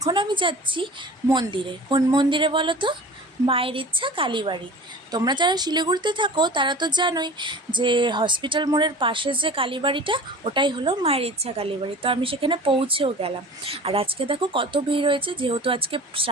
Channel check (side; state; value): both; normal; correlation 0.39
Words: আমি যাচ্ছি মন্দিরে। কোন মন্দিরে বলো তো? মায়ের ইচ্ছা কালীবাড়ি। তোমরা যারা শিলিগুড়িতে থাকো তারা তো জানোই যে হসপিটাল মোড়ের পাশে যে কালীবাড়িটা, ওটাই হলো মায়ের ইচ্ছা কালীবাড়ি। তো আমি সেখানে পৌঁছেও গেলাম। আর আজকে দেখো কত ভিড় হয়েছে, যেহেতু আজকে